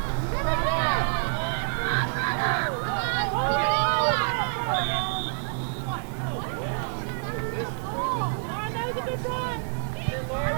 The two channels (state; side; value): silent; left; digital silence